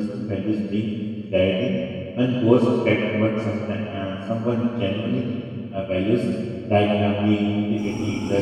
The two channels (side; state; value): both; identical; correlation 1.00